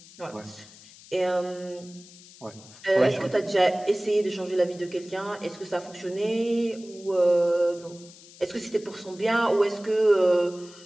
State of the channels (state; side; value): noise; left; hiss, 21 dB below the sound